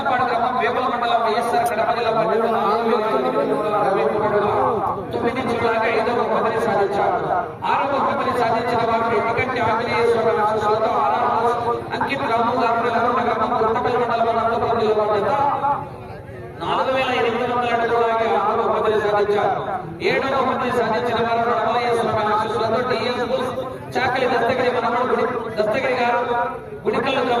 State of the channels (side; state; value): both; identical; correlation 1.00